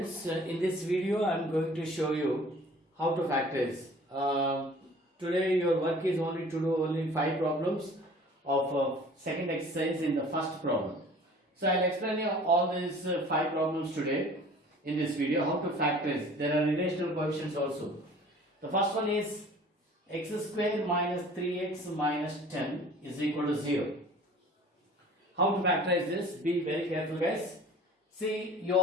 in this video I am going to show you how to factorize. Today your work is only to do only 5 problems of second exercise in the first problem. So I will explain you all these 5 problems today in this video, how to factorize. There are relational coefficients also. The first one is x square minus 3x minus 10 is equal to 0. How to factorize this? Be very careful guys. See,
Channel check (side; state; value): both; normal; correlation 0.47